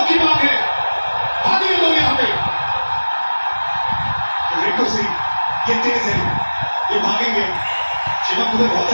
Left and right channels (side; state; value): both; inverted; correlation -1.00